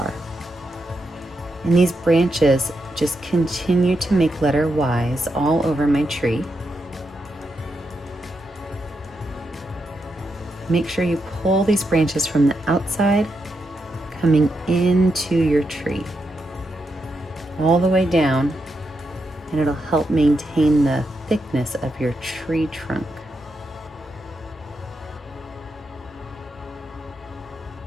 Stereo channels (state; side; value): normal; both; correlation 0.84